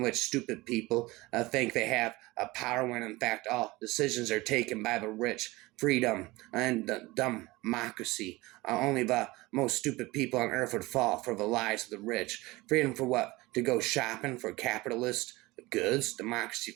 which stupid people think they have power when in fact all decisions are taken by the rich. Freedom and democracy. Only the most stupid people on earth would fall for the lies of the rich. Freedom for what? To go shopping for capitalist goods. Democracy,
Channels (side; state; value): left; quieter; 21.2 dB